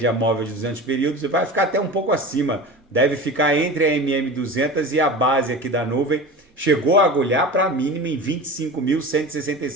móvel de 200 períodos e vai ficar até um pouco acima. Deve ficar entre a MM200 e a base aqui da nuvem. Chegou a agulhar para a mínima em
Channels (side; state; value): both; normal; correlation 0.32